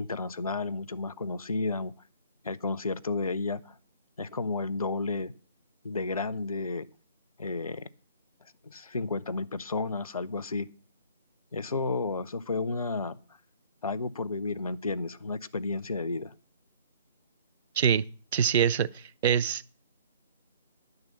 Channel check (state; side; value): inverted; both; correlation -0.53